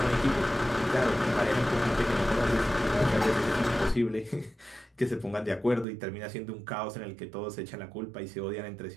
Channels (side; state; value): left; drops out; at 5.9 s